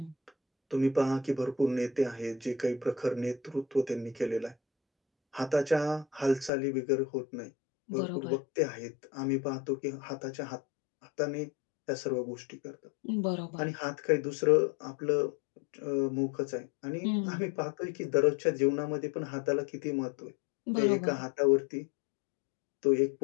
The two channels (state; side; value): drops out; right; at 6.5 s